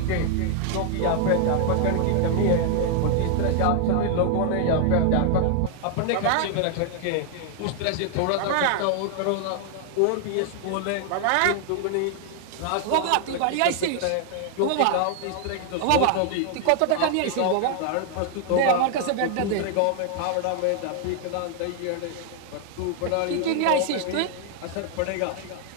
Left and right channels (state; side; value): different; both; correlation 0.00